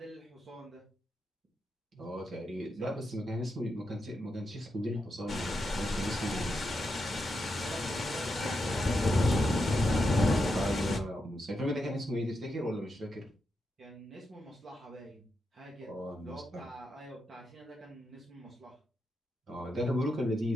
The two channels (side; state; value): both; normal; correlation 0.85